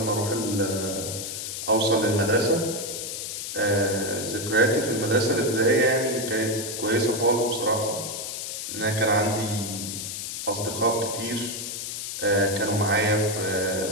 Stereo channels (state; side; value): noise; left; hiss, 6 dB below the sound